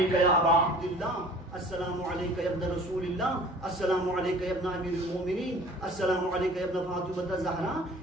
یا ابا عبداللہ، السلام علیکہ یا ابن رسول اللہ، السلام علیکہ یا ابن امیر المومنین، السلام علیکہ یا ابن فاطمہ الزہرا،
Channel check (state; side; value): normal; both; correlation 0.47